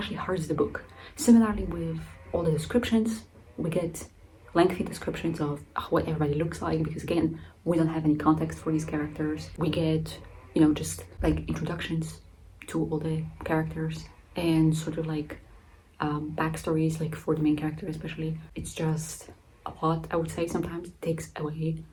hurts the book. Similarly with all the descriptions, we get lengthy descriptions of what everybody looks like, because again, we don't have any context for these characters. We get, just like introductions to all the characters and sort of like backstories, like for the main character especially. It's just a lot, I would say. Sometimes it takes away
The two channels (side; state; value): both; identical; correlation 1.00